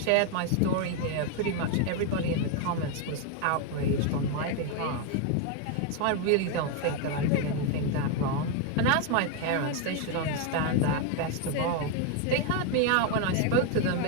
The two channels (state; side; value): different; both; correlation 0.01